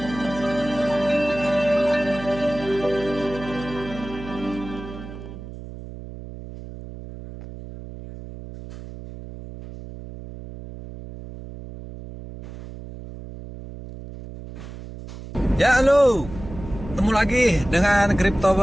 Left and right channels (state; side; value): noise; right; hum, 13 dB below the sound